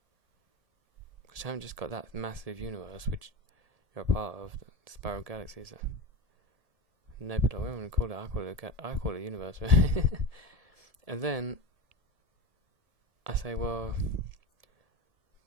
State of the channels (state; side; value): late; left; 1.7 ms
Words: Because you haven't just got that massive universe, which you're a part of, the spiral galaxies, nebula. What am I going to call it? I call it a universe. And then I say, well,